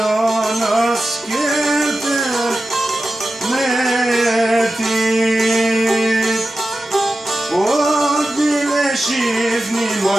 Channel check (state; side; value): normal; both; correlation 0.93